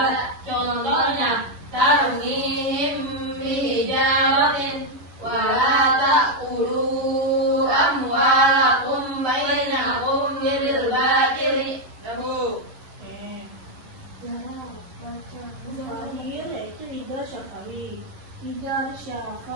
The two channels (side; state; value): left; late; 11 ms